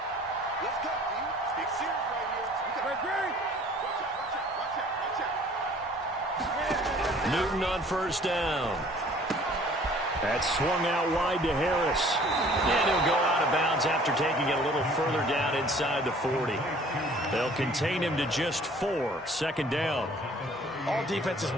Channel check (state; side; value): normal; both; correlation 0.53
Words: Newton on first down. That's swung out wide to Harris. And he'll go out of bounds after taking it a little further down inside the 40. They'll contain him to just 4. 2nd down. All defenses